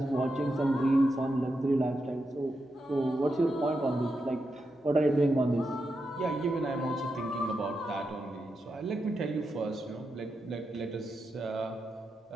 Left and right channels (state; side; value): normal; both; correlation 0.86